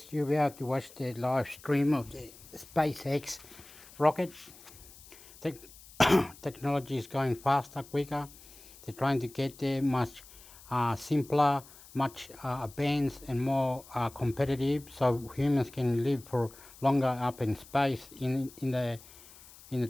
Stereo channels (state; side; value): noise; left; hiss, 21 dB below the sound